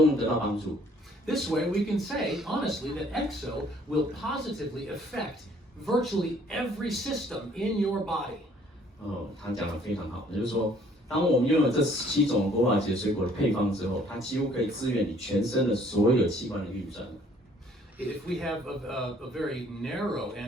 能得到帮助。This way, we can say honestly that EXO will positively affect virtually every system in your body. 他讲得非常好，也就是说，当我们拥有这17种国宝级水果的配方之后，它几乎可以支援你全身的所有器官的运转。If we have a very narrow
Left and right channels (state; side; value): normal; both; correlation 0.59